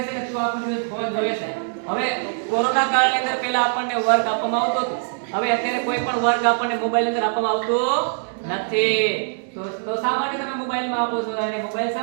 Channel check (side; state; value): left; silent; digital silence